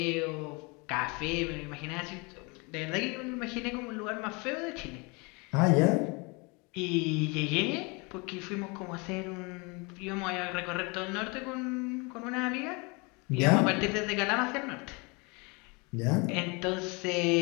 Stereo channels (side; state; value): right; quieter; 28.9 dB